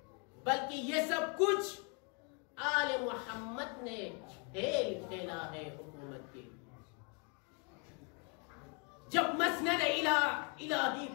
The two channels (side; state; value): right; quieter; 35.2 dB